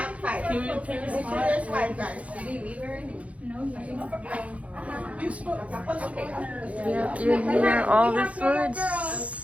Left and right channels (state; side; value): late; left; 0.065 ms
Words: five. There's five, guys. You hear all these